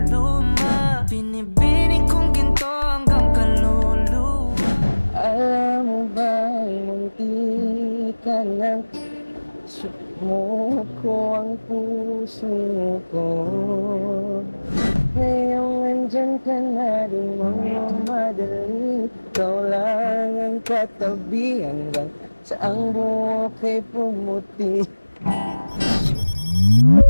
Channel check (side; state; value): both; inverted; correlation -1.00